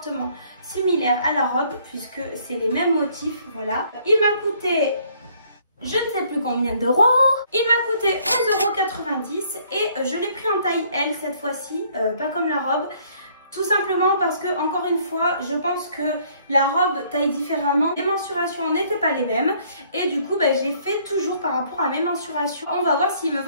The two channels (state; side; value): inverted; both; correlation -0.63